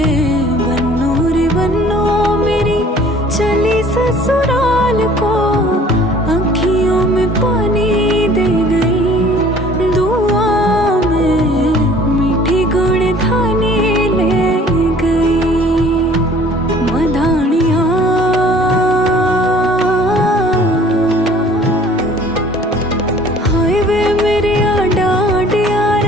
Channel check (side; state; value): both; normal; correlation 0.52